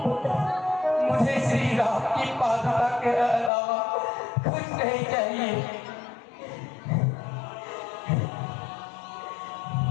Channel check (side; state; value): right; drops out; at 3.5 s